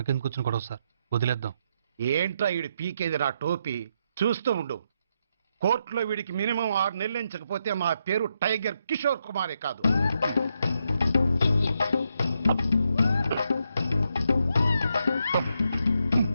వచ్చిన గొడవ సార్, వదిలేద్దాం. ఏంట్రా వీడి పీకేది నా టోపీ? చూస్తూ ఉండు. కోర్టులో వీడికి మినిమం 6 నెలలు ఎంచకపోతే మా పేరు టైగర్ కిషోర్ కుమారే కాదు.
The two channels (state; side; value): inverted; both; correlation -0.80